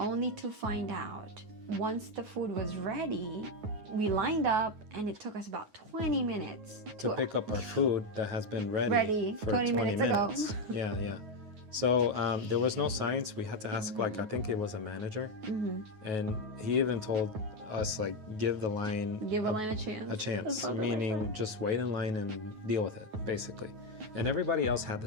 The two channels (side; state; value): left; late; 9.4 ms